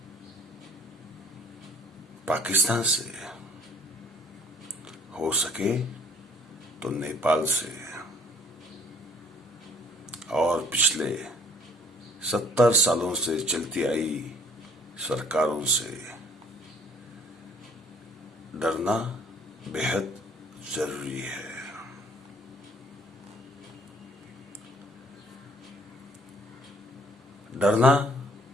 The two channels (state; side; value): normal; both; correlation 0.57